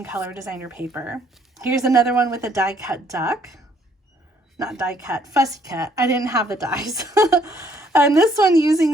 color designer paper. Here's another one with a die cut duck. Not die cut, fussy cut. I didn't have the dies. And this one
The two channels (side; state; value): both; normal; correlation 0.65